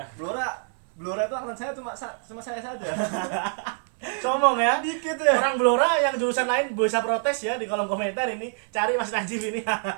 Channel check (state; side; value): silent; left; 59 dB below the other